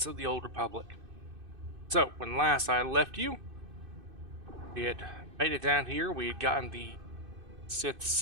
of the Old Republic. So, when last I left you, we had made it down here. We had gotten the Sith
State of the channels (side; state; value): left; late; 2.6 ms